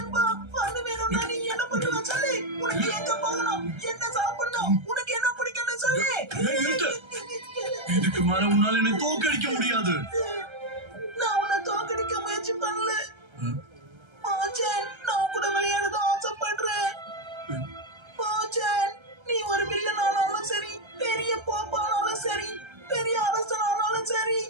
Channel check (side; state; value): left; late; 1.3 ms